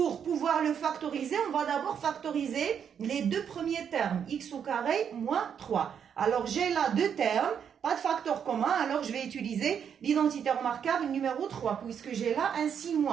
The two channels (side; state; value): left; quieter; 7.9 dB